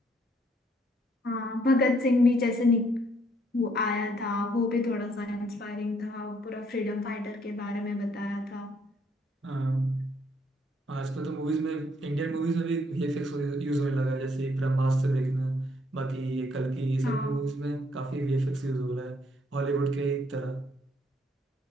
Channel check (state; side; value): normal; both; correlation 0.68